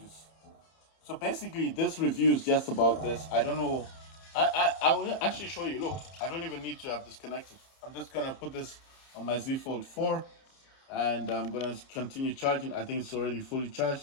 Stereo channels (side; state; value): right; late; 31 ms